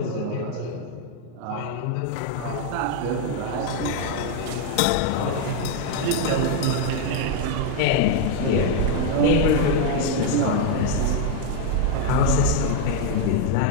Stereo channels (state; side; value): different; both; correlation 0.00